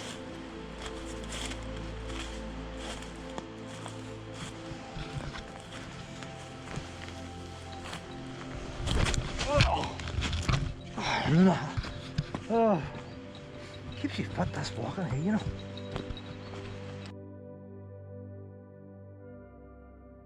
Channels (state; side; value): identical; both; correlation 1.00